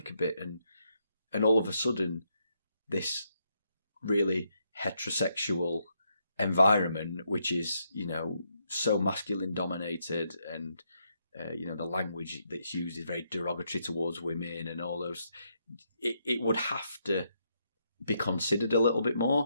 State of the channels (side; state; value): both; inverted; correlation -0.78